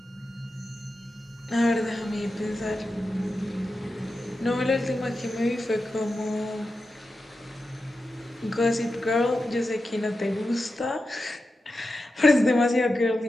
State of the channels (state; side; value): normal; both; correlation 0.91